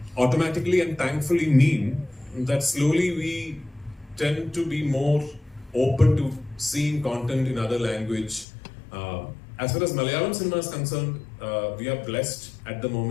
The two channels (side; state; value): right; drops out; at 8.5 s